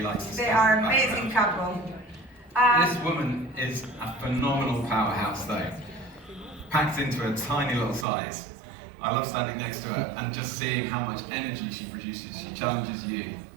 he likes to They stand are in the amazing background. couple. This woman is a phenomenal powerhouse though, packed into a tiny little size. I love standing next to her and just seeing how much energy she produces. She challenges you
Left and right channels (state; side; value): drops out; left; at 8.1 s